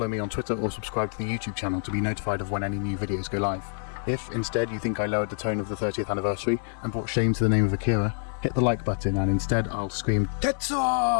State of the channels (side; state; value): right; silent; digital silence